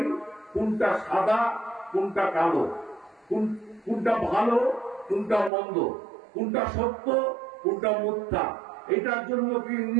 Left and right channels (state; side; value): drops out; left; at 5.5 s